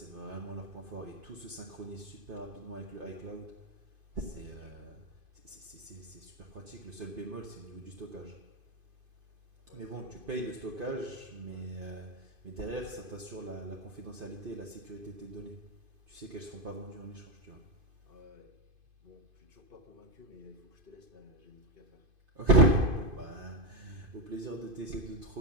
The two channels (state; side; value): late; left; 2.5 ms